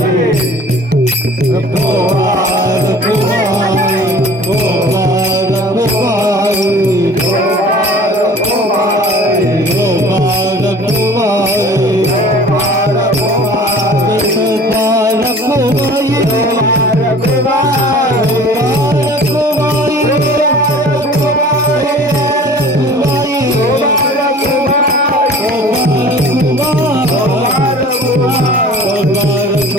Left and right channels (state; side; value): normal; both; correlation 0.45